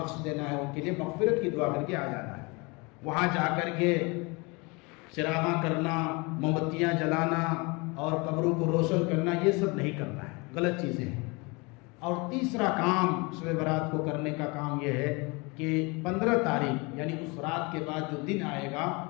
دینا ہے، ان کے لیے مغفرت کی دعا کر کے آ جانا ہے. وہاں جا کر کے چراغاں کرنا، موم بتیاں جلانا اور قبروں کو روشن کرنا، یہ سب نہیں کرنا ہے، غلط چیزیں ہیں. اور تیسرا کام شب برات کو کرنے کا کام یہ ہے کہ 15 تاریخ یعنی اس رات کے بعد جو دن آئے گا،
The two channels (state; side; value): quieter; right; 27.8 dB